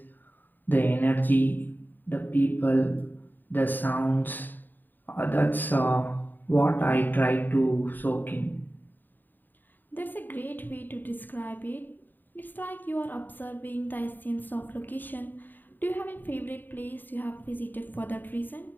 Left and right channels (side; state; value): right; late; 0.090 ms